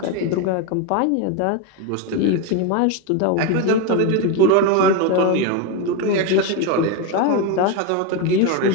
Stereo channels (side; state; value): both; different; correlation 0.03